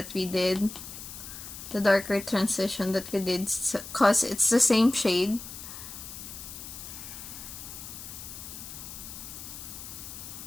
we did, the darker transition that we did, because it's the same shade.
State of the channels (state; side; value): noise; left; hiss, 11 dB below the sound